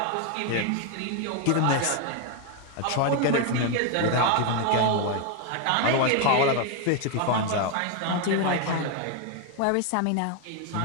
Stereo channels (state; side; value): different; both; correlation 0.01